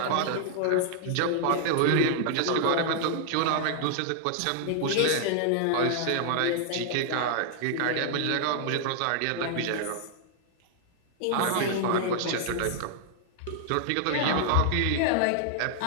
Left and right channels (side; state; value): both; different; correlation -0.01